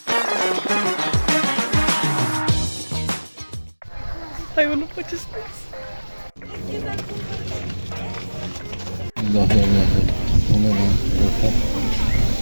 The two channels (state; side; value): inverted; both; correlation -1.00